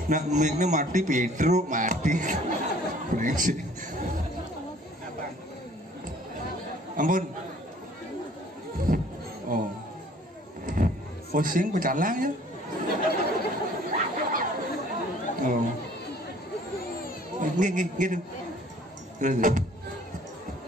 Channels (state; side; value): normal; both; correlation 0.55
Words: nak mik mati Pedro mati ampun pusing pecalang ya gitu